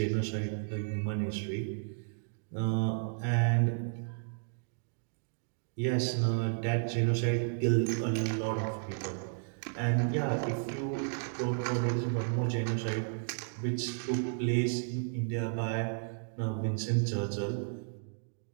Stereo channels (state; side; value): silent; left; digital silence